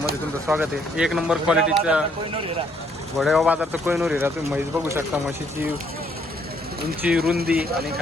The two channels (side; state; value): both; normal; correlation 0.68